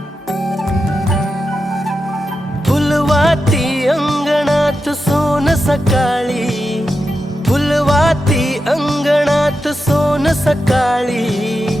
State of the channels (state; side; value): normal; both; correlation 0.89